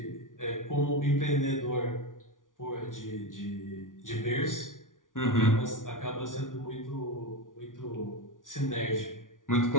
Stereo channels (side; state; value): right; late; 0.88 ms